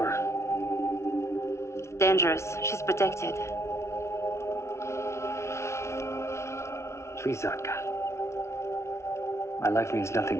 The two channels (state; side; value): late; right; 0.13 ms